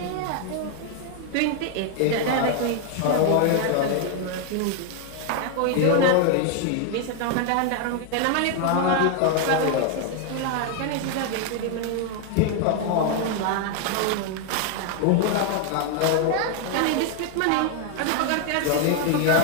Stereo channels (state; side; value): different; both; correlation 0.00